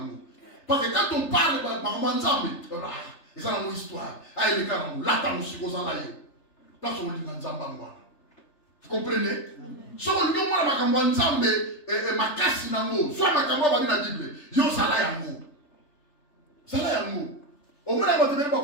Parce que quand on parle par Manzambe, ils ont une histoire. Ah, il est là, là, là, là, vous comprenez? Si on dit que Manzambe est ma casse dans l'eau, soit ma caméra va dire la Bible, yo, ça là, yango. Ça là, yango. Au moins, on va te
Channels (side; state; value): right; late; 3.3 ms